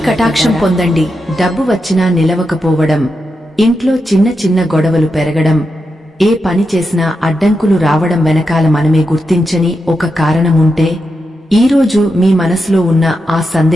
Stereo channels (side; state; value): both; normal; correlation 0.87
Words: కటాక్షం భయపడ్డారా? పొందండి. డబ్బు వచ్చినా నిలవకపోవడం, ఇంట్లో చిన్న చిన్న గొడవలు పెరగడం, ఏ పని చేసినా అడ్డంకులు రావడం వెనకాల మనమే గుర్తించని ఒక కారణముంటే ఈరోజు మీ మనసులో ఉన్న ఆ